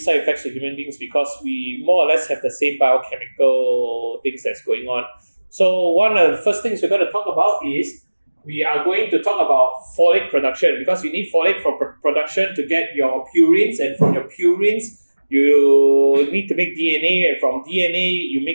effects to human beings, because we more or less have the same biochemical things that's going on. So one of the first things we're going to talk about is we are going to talk about folate production, because you need folate for production to get your purines, and from your purines you need to make DNA, and from DNA you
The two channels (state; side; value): inverted; both; correlation -1.00